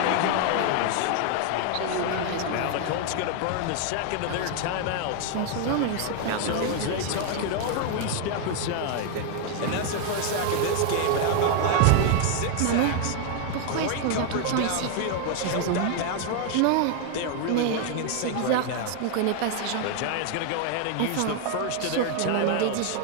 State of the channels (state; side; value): different; both; correlation 0.00